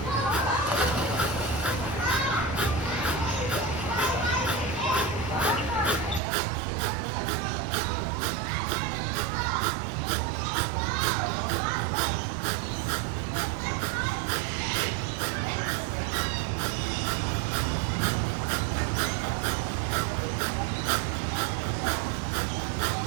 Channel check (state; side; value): drops out; left; at 6.2 s